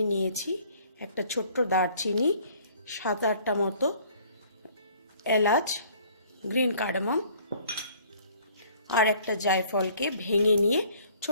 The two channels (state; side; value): inverted; both; correlation -0.57